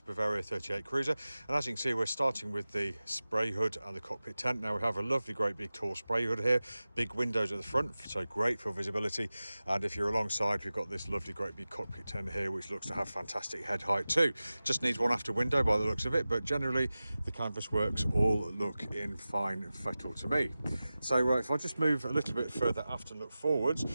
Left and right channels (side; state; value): both; inverted; correlation -0.96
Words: 38 cruiser. And as you can see, we're starting with the spray hood and the cockpit tent. Now we have a lovely great big tall spray hood here, big windows at the front, so great for visibility. And if you're alongside, we've got this lovely great big cockpit tent here, which looks to have fantastic head height too. Just needs one after window by the looks of it, but generally the canvas works all look in fine fettle to me. So if I just move a little bit further aft and look forwards,